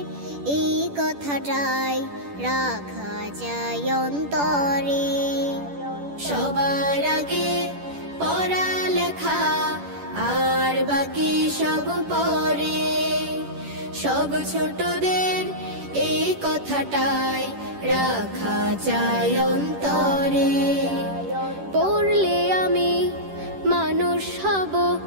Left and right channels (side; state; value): left; late; 10 ms